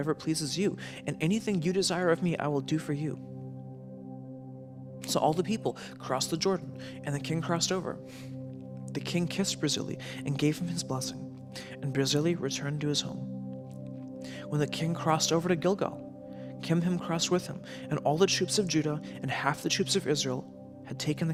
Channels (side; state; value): both; identical; correlation 1.00